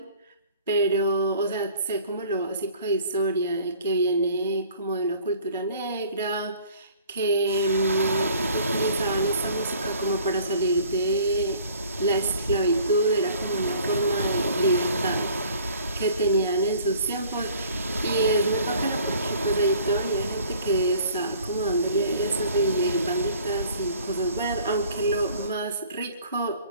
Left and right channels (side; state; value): both; inverted; correlation -0.53